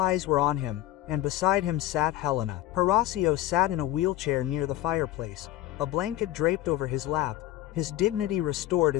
were on him, and beside him sat Helena. Horacio sat in a wheelchair near the fireplace, a blanket draped over his lap, his dignity restored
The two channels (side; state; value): right; quieter; 14.7 dB